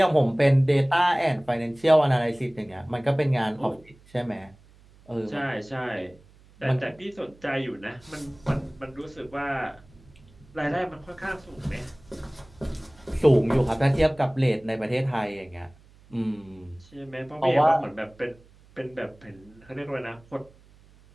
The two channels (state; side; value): noise; right; hum, 27 dB below the sound